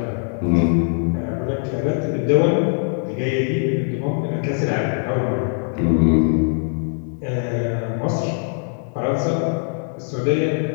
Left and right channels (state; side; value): silent; right; 61 dB below the other